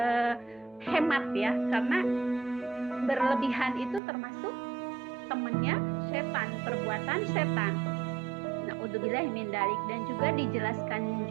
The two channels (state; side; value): drops out; left; at 4.0 s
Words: hemat ya, karena berlebihan itu termasuk temannya setan, perbuatan setan. Na'udzubillahi min dzalik. Dan juga dijelaskan